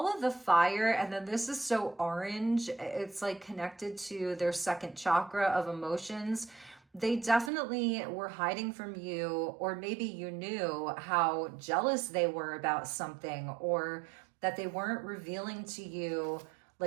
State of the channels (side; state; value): left; drops out; at 7.5 s